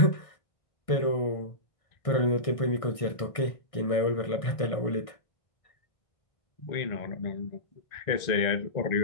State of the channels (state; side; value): late; right; 1.6 ms